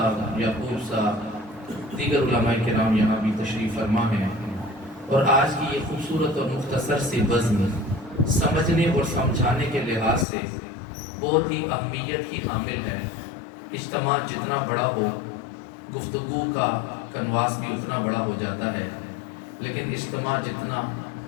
یعقوب صاحب، دیگر علماء کرام یہاں بھی تشریف فرما ہیں، اور آج کی یہ خوبصورت اور مختصر سی بزم سمجھنے اور سمجھانے کے لحاظ سے بہت ہی اہمیت کی حامل ہے۔ اجتماع جتنا بڑا ہو، گفتگو کا کنواس بھی اتنا بڑا ہو جاتا ہے، لیکن اجتماع جتنا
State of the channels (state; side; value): drops out; right; at 10.2 s